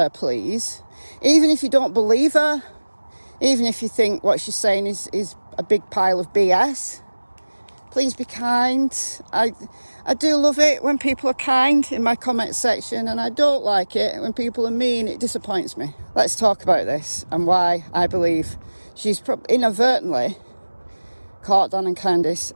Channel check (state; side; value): inverted; both; correlation -1.00